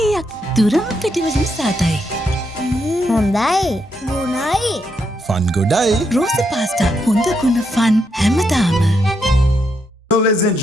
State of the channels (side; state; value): both; normal; correlation 0.79